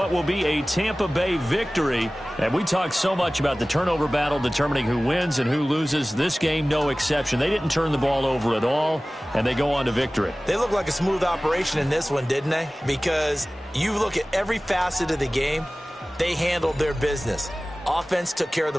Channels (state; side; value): normal; both; correlation 0.98